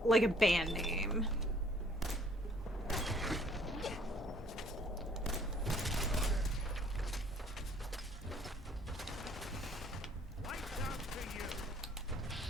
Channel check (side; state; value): both; normal; correlation 0.59